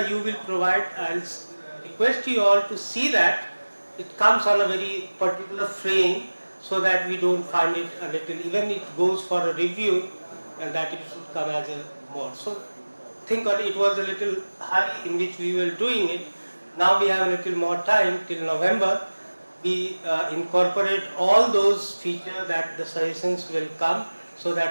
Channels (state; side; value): inverted; both; correlation -1.00